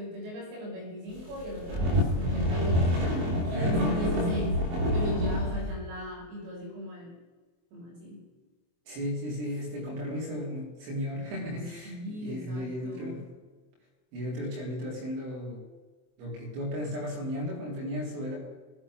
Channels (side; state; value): left; late; 23 ms